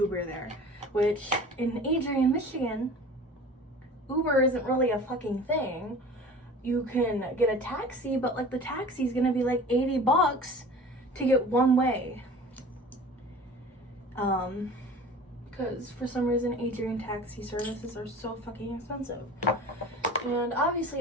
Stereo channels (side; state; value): both; normal; correlation 0.41